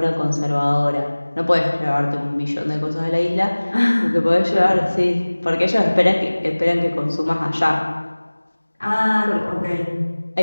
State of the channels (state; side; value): inverted; both; correlation -1.00